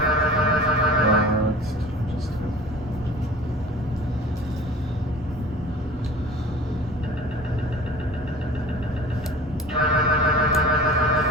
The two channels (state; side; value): normal; both; correlation 0.41